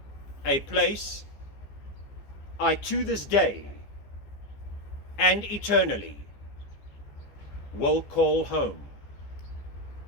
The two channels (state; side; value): late; right; 14 ms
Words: a place I to this day and eternally will call home.